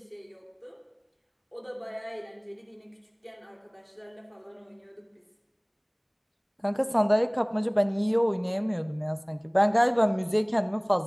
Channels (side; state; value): both; identical; correlation 1.00